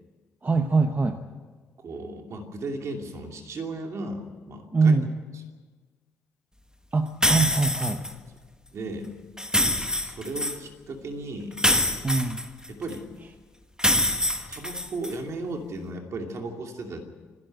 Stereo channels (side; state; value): both; normal; correlation 0.40